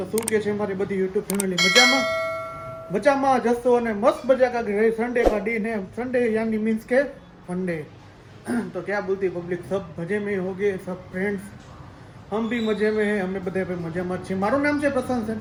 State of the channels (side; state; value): both; identical; correlation 1.00